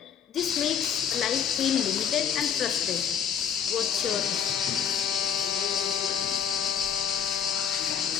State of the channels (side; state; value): right; quieter; 8.0 dB